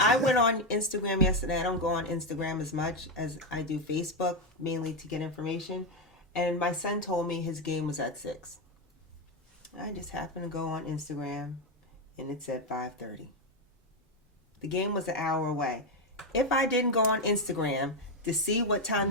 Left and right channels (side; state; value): both; normal; correlation 0.07